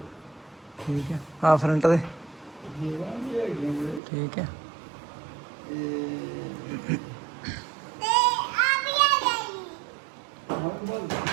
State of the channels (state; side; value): drops out; left; at 4.0 s